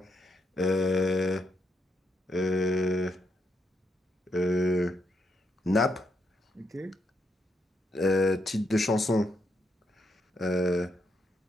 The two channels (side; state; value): both; normal; correlation 0.78